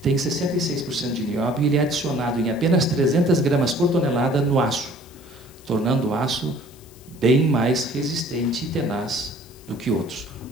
tem 66% de nióbio e ele é adicionado em apenas 300 gramas por tonelada no aço, tornando o aço bem mais resistente e tenaz do que outros.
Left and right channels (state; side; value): noise; left; hiss, 24 dB below the sound